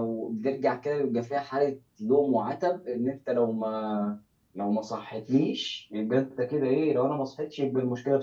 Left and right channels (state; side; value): identical; both; correlation 1.00